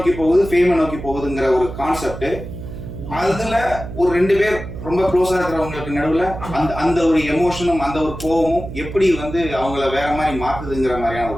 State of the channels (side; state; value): right; noise; hum, 10 dB below the sound